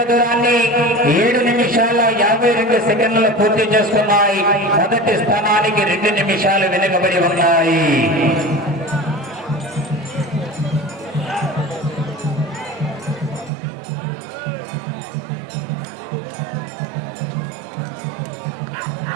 దూరాన్ని 7 నిమిషాల 52 సెకండ్లు పూర్తి చేసుకున్నాయి. మొదటి స్థానానికి 2 నిమిషాలు వెనుకబడి ఉన్నాయి.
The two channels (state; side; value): drops out; left; at 13.5 s